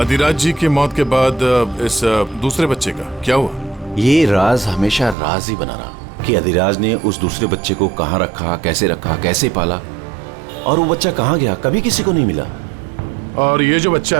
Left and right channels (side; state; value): left; drops out; at 5.2 s